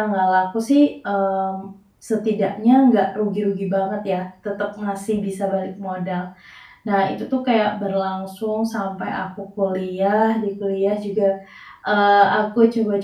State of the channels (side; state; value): both; identical; correlation 1.00